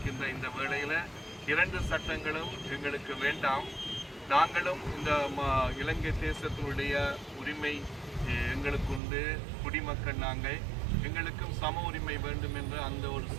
இந்த வேளையில 2 சட்டங்களும் எங்களுக்கு வேண்டாம். நாங்களும் இந்த இலங்கை தேசத்தினுடைய உரிமை எங்களுக்கு உண்டு, குடிமக்கள் நாங்கள், எங்களுக்கும் சம உரிமை வேண்டும் என்ற அந்த ஒரு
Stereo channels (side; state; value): left; drops out; at 9.0 s